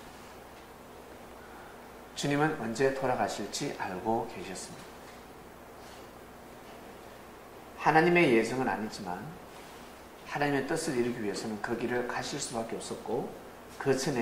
주님은 언제 돌아가실지 알고 계셨습니다. 하나님의 예정은 아니지만 하나님의 뜻을 이루기 위해서는 그 길을 가실 수밖에 없었고 그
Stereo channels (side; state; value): both; identical; correlation 1.00